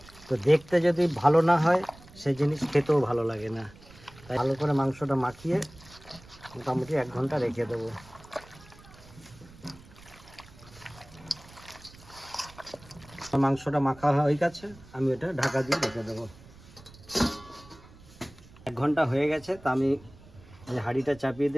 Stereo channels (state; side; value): noise; right; rumble, 22 dB below the sound